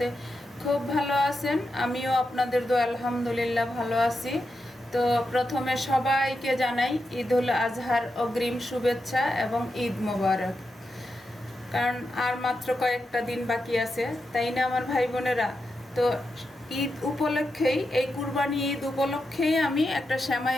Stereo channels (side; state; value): both; normal; correlation 0.87